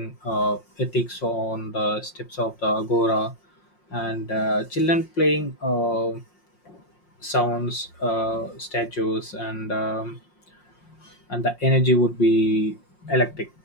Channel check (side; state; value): right; late; 5.6 ms